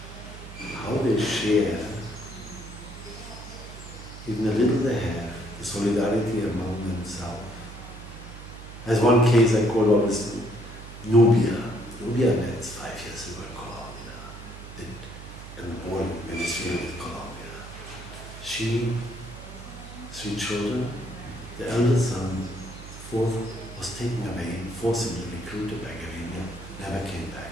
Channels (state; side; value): noise; right; hum, 14 dB below the sound